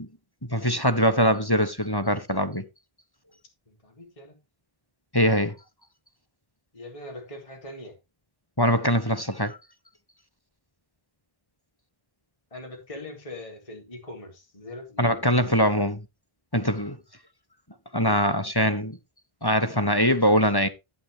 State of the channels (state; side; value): late; right; 1.1 ms